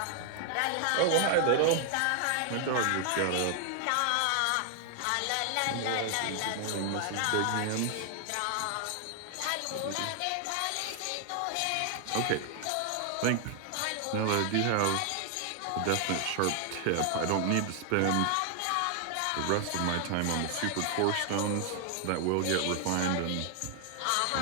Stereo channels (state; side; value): different; both; correlation 0.00